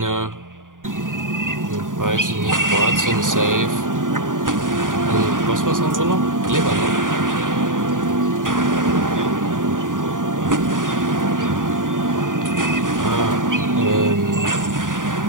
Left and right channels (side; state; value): left; late; 0.88 ms